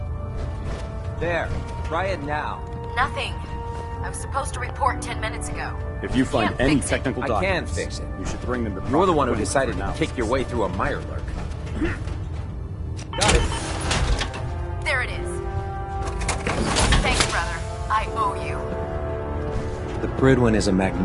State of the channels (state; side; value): identical; both; correlation 1.00